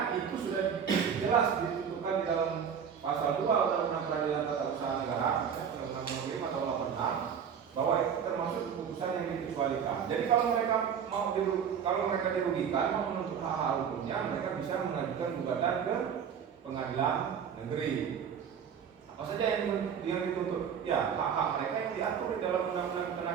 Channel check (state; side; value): quieter; left; 7.6 dB